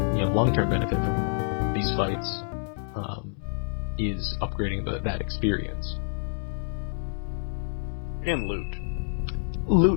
long-term benefit from these fights is upgrading that experience. And loot.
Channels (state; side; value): silent; right; 60 dB below the other